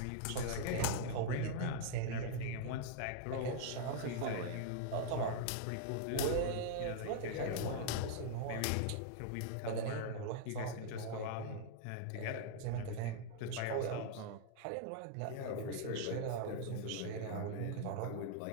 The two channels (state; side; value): different; both; correlation -0.01